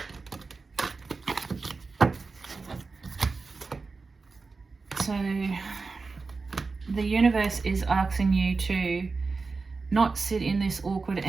So the universe is asking you to not sit in this awkward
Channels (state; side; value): quieter; left; 4.2 dB